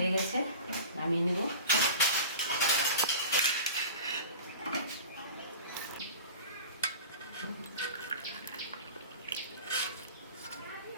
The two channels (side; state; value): both; inverted; correlation -0.37